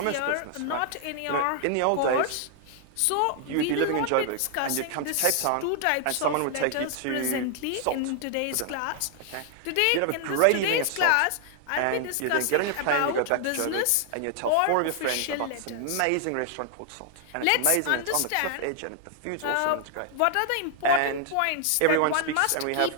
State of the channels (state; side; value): different; both; correlation 0.00